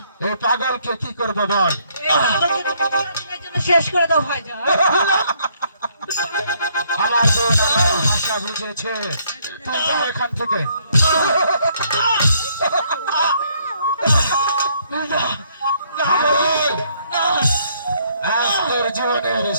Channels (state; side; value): inverted; both; correlation -0.68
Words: এই পাগলকে কি করবো বল? শেষ করে দাও ভাইজান। আমার বোন আমার ভাষা বুঝেছে, তুই যা এখান থেকে। পাগল, আজ তোর জীবনের